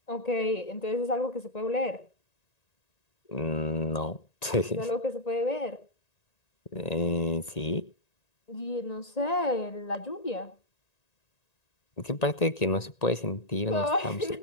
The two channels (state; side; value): late; right; 1.9 ms